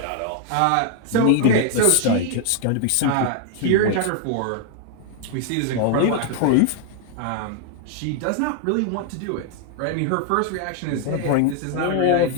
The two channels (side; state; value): both; different; correlation 0.00